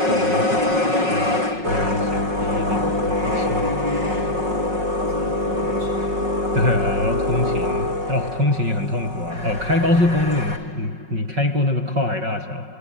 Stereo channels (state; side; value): late; left; 5.5 ms